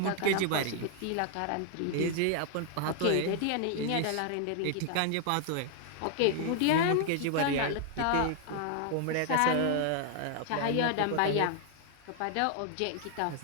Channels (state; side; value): different; both; correlation 0.00